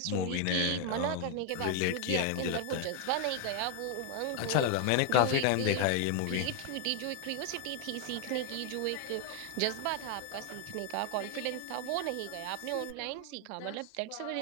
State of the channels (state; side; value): different; both; correlation 0.00